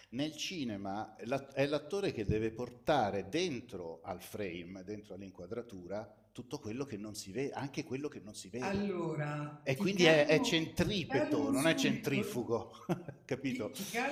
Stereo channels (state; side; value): identical; both; correlation 1.00